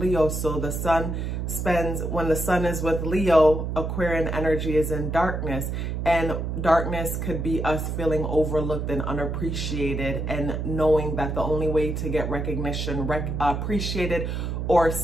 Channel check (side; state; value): right; noise; hum, 3 dB below the sound